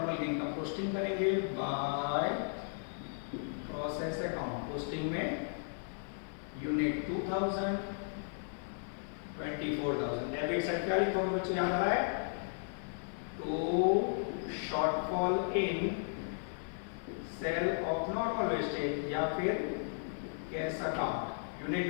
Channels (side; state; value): right; silent; 54 dB below the other